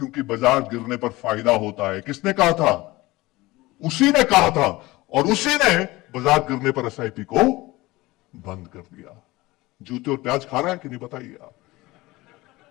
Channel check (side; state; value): right; quieter; 20.1 dB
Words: बाजार गिरने पर फायदा होता है। किसने कहा था? उसी ने कहा था, और उसी ने बाजार गिरने पर SIP को बंद कर दिया। जूते और प्याज खा रहा है कि नहीं बताइए आप?